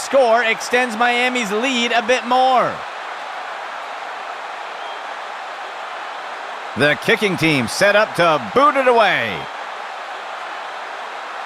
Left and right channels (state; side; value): identical; both; correlation 1.00